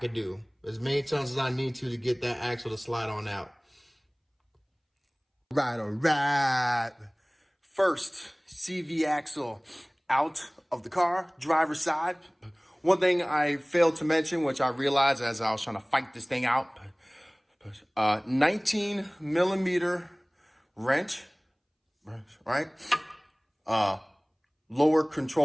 as many times as I need to get that axle to slide on out. All right. First, CV axle out of the car, driver's side. One thing I failed to mention, which I realized as I was trying to fight this thing out, 19 millimeter wrench, right? Lower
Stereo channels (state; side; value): identical; both; correlation 1.00